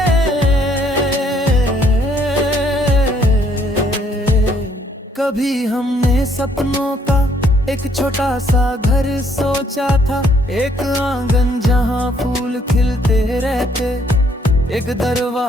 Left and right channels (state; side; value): normal; both; correlation 0.67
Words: सपनों का एक छोटा सा घर सोचा था, एक आंगन जहाँ फूल खिलते रहते, एक